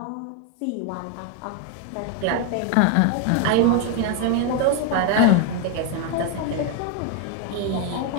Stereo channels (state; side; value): different; both; correlation 0.01